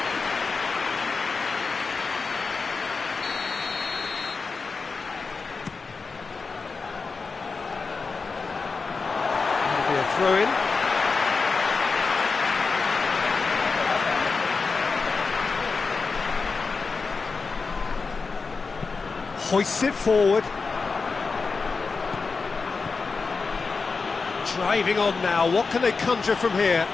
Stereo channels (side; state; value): right; quieter; 4.5 dB